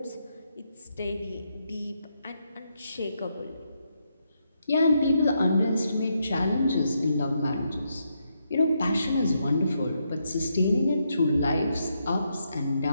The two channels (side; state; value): both; inverted; correlation -0.80